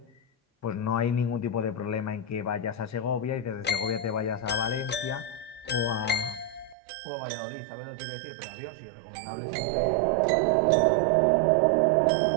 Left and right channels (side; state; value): left; drops out; at 6.8 s